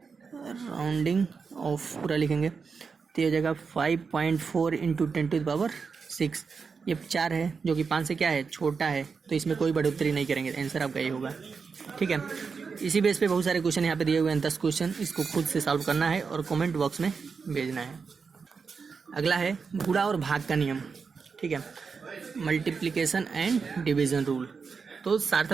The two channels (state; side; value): quieter; left; 5.3 dB